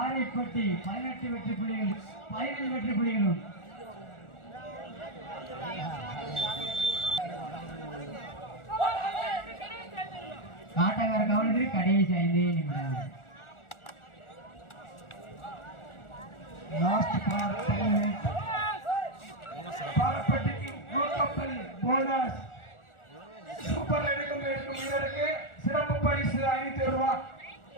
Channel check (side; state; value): right; late; 1.4 ms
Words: 18 வெற்றி புள்ளிகளும் 15 வெற்றி புள்ளிகளும். காட்டக்கார கவனத்தில் கடைசி 5 நிமிடம். லாஸ்ட் பாரப்பட்டிக்கு நூற்றம்பது போனஸ். சூப்பர் எடுக்கும் வீரருக்கு சிறப்பு பரிசு 500 ரூபாய்.